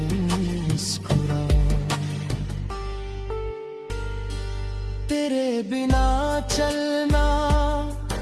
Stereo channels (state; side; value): identical; both; correlation 1.00